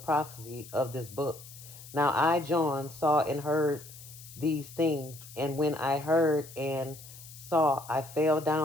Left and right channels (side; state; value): left; noise; hiss, 17 dB below the sound